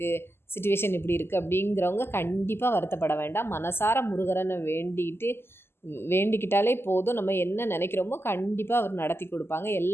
சுச்சுவேஷன் இப்படி இருக்குது அப்படிங்கிறவங்க கண்டிப்பாக வருத்தப்பட வேண்டாம். மனசார முருகரனை வேண்டிக்கிட்டாலே போதும். நம்ம என்ன நினைக்கிறோமோ கண்டிப்பாக அவர் நடத்தி கொடுப்பாங்க.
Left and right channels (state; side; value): late; right; 0.12 ms